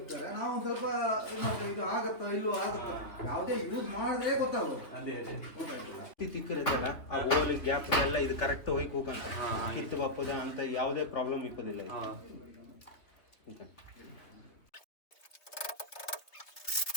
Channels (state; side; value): late; right; 3.4 ms